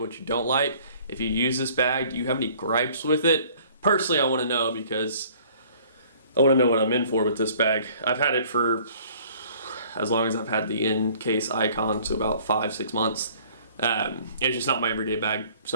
you don't like. If you use this bag, do you have any gripes with it? Personally, I want to know, because I want to know what I'm in for with this bag. I've had it for as long as I've had the in-case Icon, so about 5-6 months. It's just not my everyday bag,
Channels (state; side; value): inverted; both; correlation -0.55